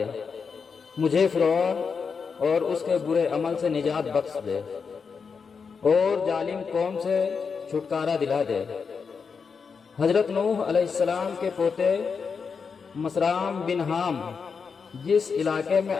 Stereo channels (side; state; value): right; quieter; 5.6 dB